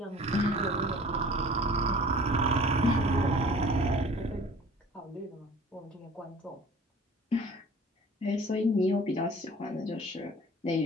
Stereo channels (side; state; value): both; normal; correlation 0.47